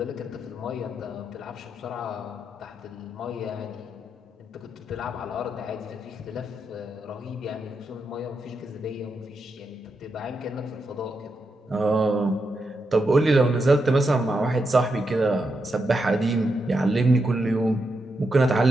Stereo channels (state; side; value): normal; both; correlation 0.84